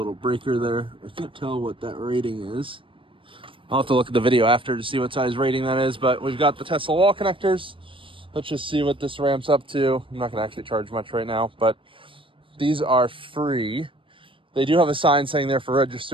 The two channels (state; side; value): late; left; 0.25 ms